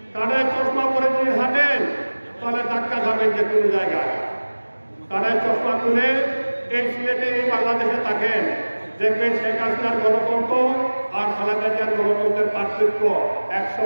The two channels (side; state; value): both; inverted; correlation -1.00